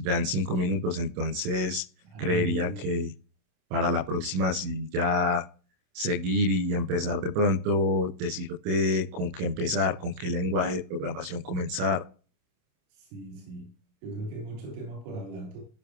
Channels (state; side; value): late; left; 27 ms